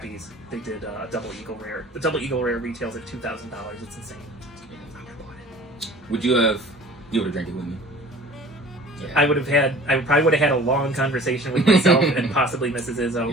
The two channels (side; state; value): both; normal; correlation 0.46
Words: They did a Double Eagle Rare. The Double Eagle Rare retails at $2,000. It's insane. Would you have? You would have drank it with me. Yeah. I probably would have had a long conversation with myself and possibly Mrs.